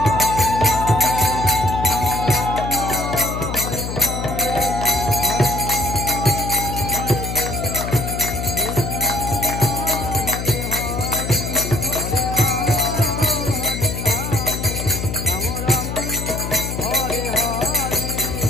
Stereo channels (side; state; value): left; noise; hum, 5 dB below the sound